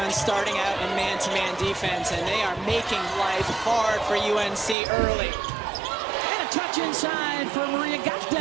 starting out in man-to-man defense, and they are making life hard for UNC early. And a touch inside for Maria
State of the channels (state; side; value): drops out; left; at 4.8 s